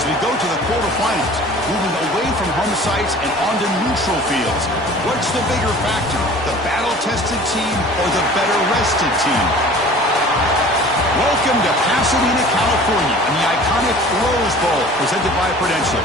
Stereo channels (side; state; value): both; normal; correlation 0.45